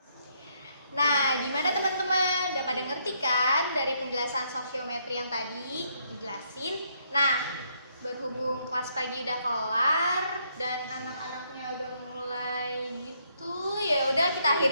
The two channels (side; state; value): both; inverted; correlation -0.73